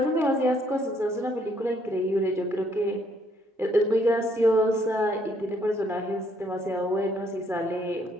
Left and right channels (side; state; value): both; normal; correlation 0.68